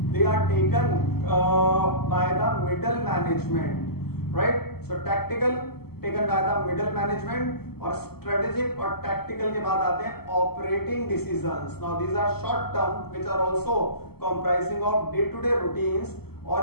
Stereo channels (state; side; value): late; right; 0.96 ms